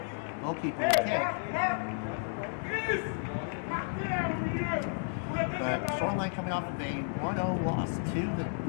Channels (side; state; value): right; silent; 56 dB below the other